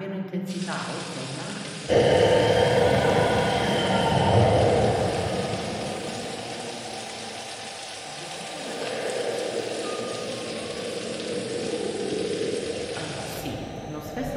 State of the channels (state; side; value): identical; both; correlation 1.00